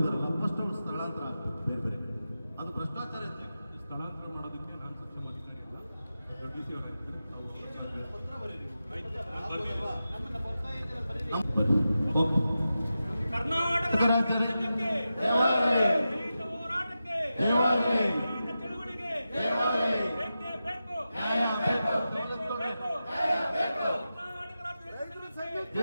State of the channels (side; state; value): both; inverted; correlation -0.92